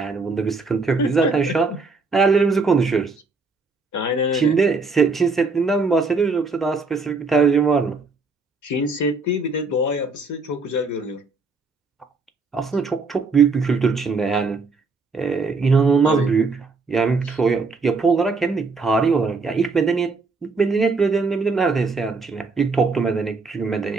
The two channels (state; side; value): quieter; left; 4.0 dB